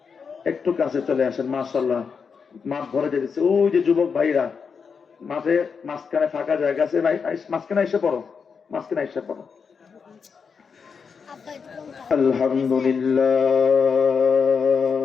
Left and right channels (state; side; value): quieter; right; 5.9 dB